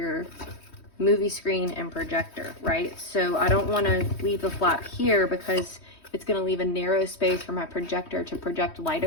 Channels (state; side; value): late; right; 3.1 ms